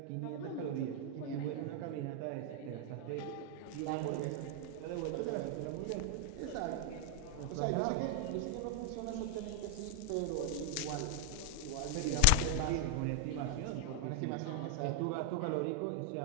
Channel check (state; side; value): different; both; correlation 0.00